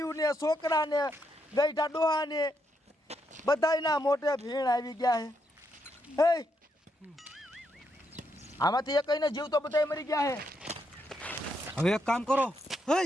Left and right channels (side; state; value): both; normal; correlation 0.79